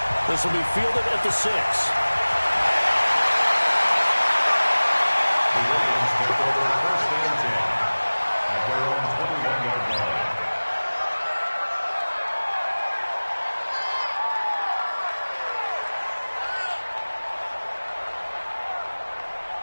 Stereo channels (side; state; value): both; inverted; correlation -1.00